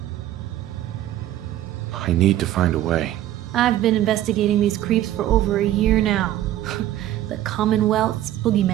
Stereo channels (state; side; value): quieter; left; 13.1 dB